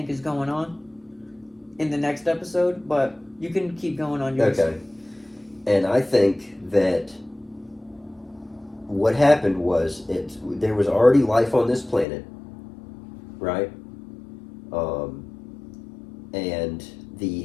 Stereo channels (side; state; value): right; drops out; at 12.1 s